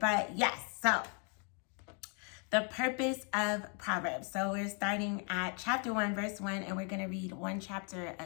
yes, so the purpose of Proverbs. So we're starting at chapter 1, verse 1, and we're going to read one chapter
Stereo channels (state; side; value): quieter; right; 39.3 dB